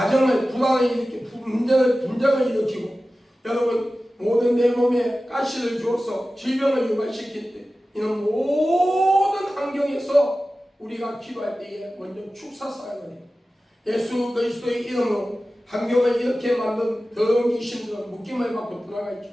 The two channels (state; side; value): normal; both; correlation 0.95